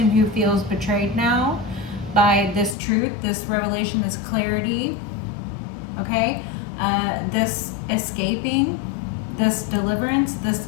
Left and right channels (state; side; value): drops out; right; at 2.8 s